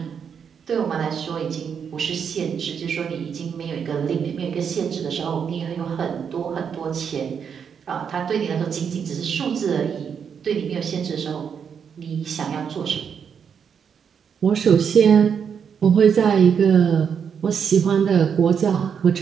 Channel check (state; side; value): quieter; left; 7.1 dB